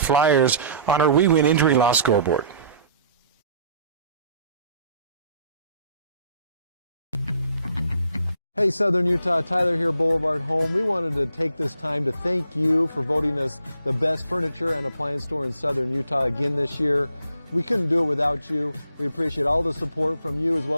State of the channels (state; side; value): inverted; both; correlation -0.59